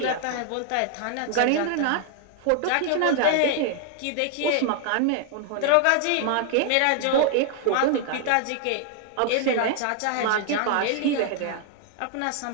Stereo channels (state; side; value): different; both; correlation 0.00